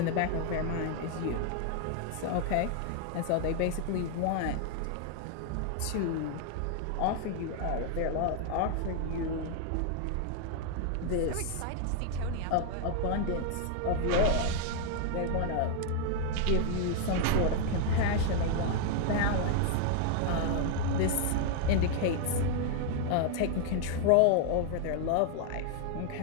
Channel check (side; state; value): both; different; correlation 0.00